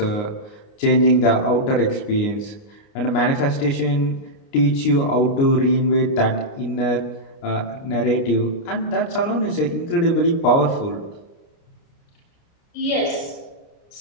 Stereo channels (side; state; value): right; late; 29 ms